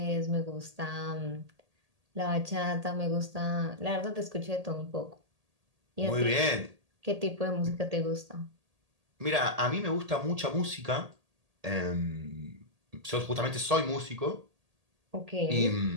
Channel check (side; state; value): left; late; 1.8 ms